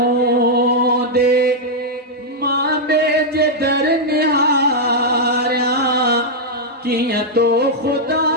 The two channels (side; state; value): both; normal; correlation -0.04